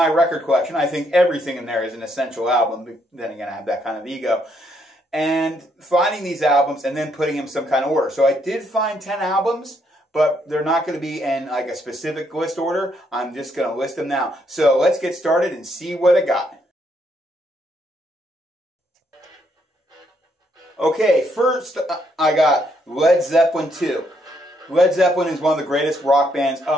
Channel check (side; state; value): both; normal; correlation 0.73